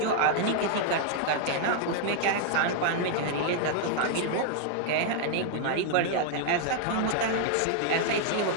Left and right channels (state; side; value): different; both; correlation 0.00